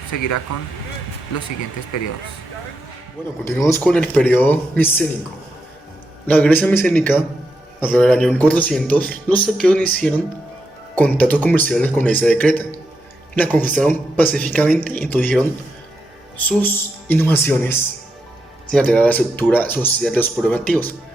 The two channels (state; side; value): normal; both; correlation 0.84